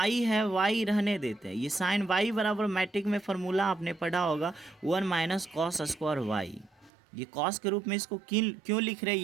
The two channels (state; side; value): drops out; left; at 6.9 s